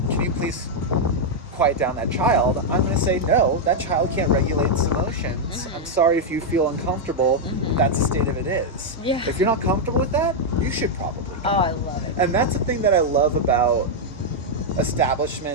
can you please quiet down that child, I'm going to say, no, that child can't regulate its emotions. I'm sorry if you feel uncomfortable. That's the state of it is. If you're not comfortable with that, you should probably go. Oh, I love it. And that's the thing that I love about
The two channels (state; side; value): normal; both; correlation -0.02